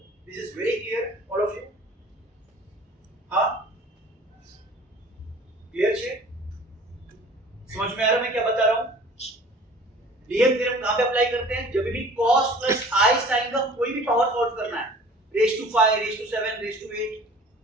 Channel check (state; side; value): normal; both; correlation 0.47